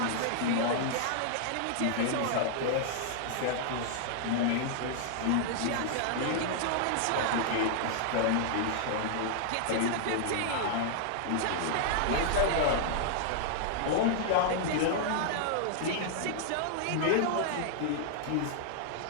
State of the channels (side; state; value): both; different; correlation -0.01